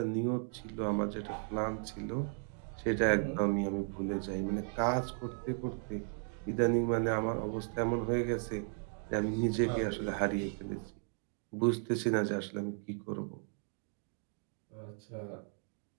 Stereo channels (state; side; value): silent; left; 54 dB below the other